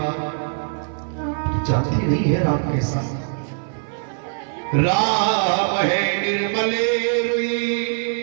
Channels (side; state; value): left; silent; 58 dB below the other